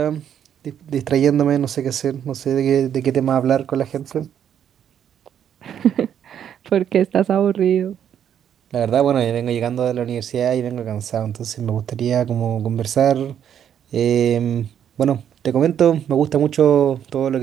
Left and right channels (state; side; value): quieter; left; 9.3 dB